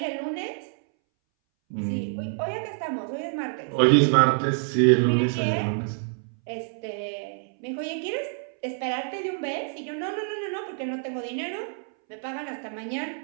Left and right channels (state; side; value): silent; left; 60 dB below the other